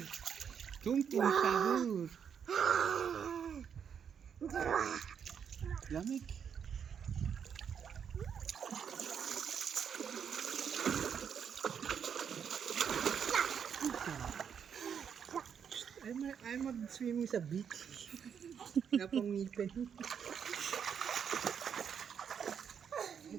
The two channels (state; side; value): quieter; left; 7.6 dB